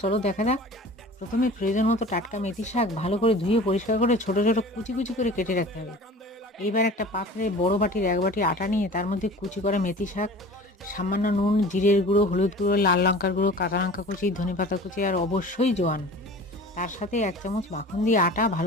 চলো দেখা যাক। প্রথমে প্রয়োজন মতো টাটকা মেথি শাক ভালো করে ধুয়ে পরিষ্কার করে ছোট ছোট কুচি কুচি করে কেটে রাখতে হবে। এইবার একটা পাত্রে বড় বাটির 1 বাটি আটা নিয়ে তার মধ্যে কুচি করা মেথি শাক, সামান্য নুন, জিরের গুঁড়ো, হলুদ গুঁড়ো, লাল লঙ্কার গুঁড়ো, কাঁচা লঙ্কা কুচি, ধনেপাতা কুচি আর অবশ্যই জোয়ান, তার সাথে 1 চামচ মাখন দিয়ে আটা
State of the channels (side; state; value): both; normal; correlation 0.41